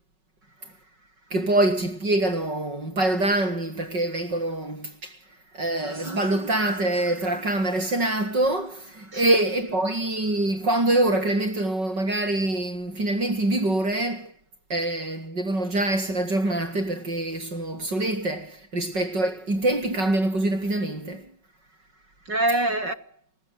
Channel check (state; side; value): late; left; 5.3 ms